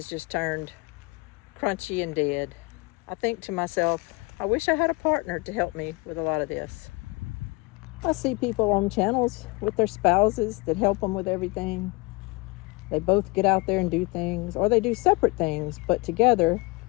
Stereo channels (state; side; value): quieter; right; 26.1 dB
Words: just turned crunchy and dead, I think to myself, I wish I had a partner to help me with a lot of this. I see people on channels with their spouses that help them with everything. They both get out there and do things, or they do separate things, but together